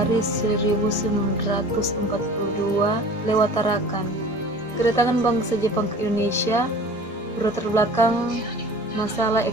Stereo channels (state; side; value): normal; both; correlation 0.43